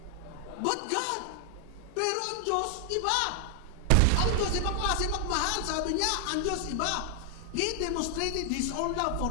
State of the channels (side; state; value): both; different; correlation 0.00